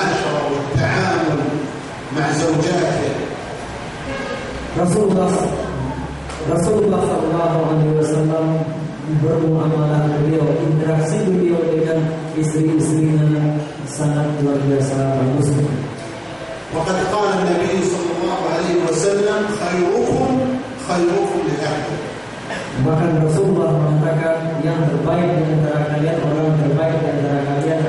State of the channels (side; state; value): both; identical; correlation 1.00